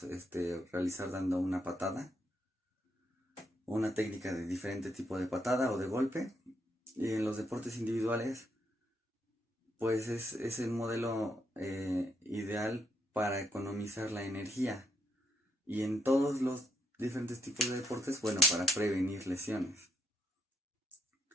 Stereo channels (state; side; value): normal; both; correlation 0.77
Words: realizar dando una patada, una técnica de diferente tipo de patada o de golpe, y en los deportes individuales pues es el modelo ideal para economizar la energía. Y en todos los diferentes tipos de deportes, bueno, para prevenir lesiones.